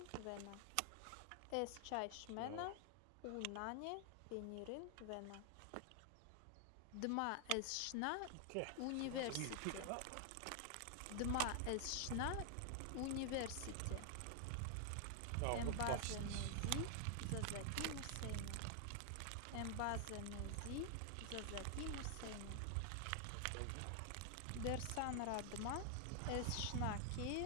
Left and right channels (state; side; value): different; both; correlation 0.00